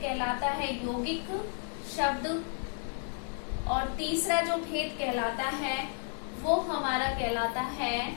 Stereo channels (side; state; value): right; silent; 56 dB below the other